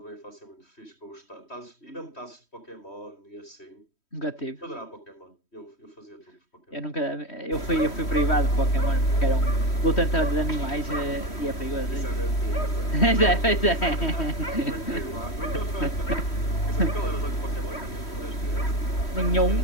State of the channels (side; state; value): right; late; 3.1 ms